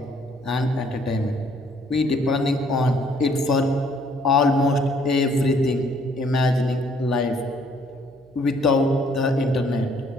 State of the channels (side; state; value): right; noise; hum, 29 dB below the sound